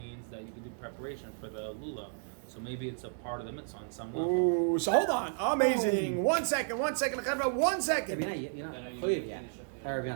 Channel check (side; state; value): left; silent; digital silence